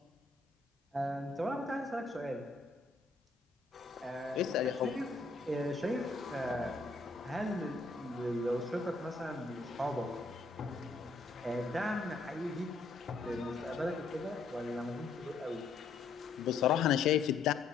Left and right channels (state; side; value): quieter; right; 4.0 dB